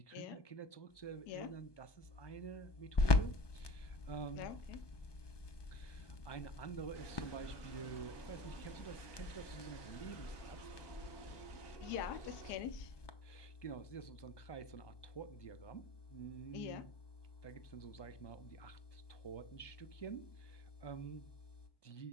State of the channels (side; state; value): right; late; 1.2 ms